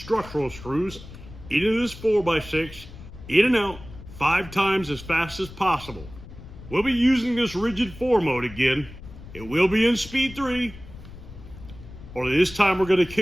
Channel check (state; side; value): noise; left; rumble, 16 dB below the sound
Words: screws into this 4x6, in and out 5 times as fast as possible. We'll be using this rigid 4 mode again. It will be in speed 3. Only this time we're going to